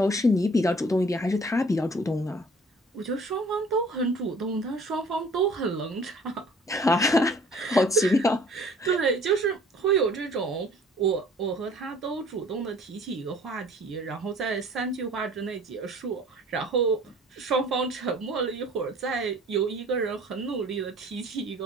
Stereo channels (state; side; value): normal; both; correlation 0.52